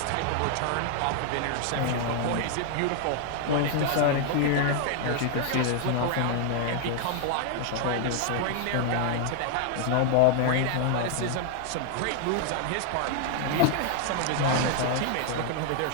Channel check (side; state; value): both; different; correlation 0.00